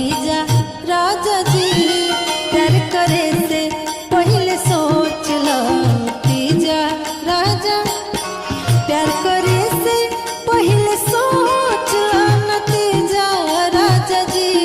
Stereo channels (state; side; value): identical; both; correlation 1.00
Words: राजा जी। प्यार करे से पहले सोच ला नतीजा राजा। प्यार करे से पहले सोच ला नतीजा राजा